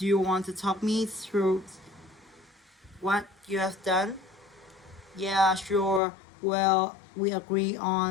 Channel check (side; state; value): right; drops out; at 6.0 s